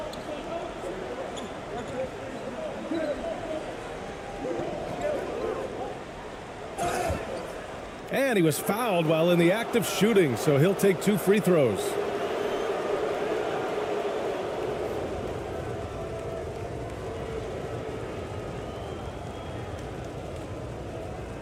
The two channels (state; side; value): identical; both; correlation 1.00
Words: And he was fouled while in the act of shooting, so he'll take 2 free throws.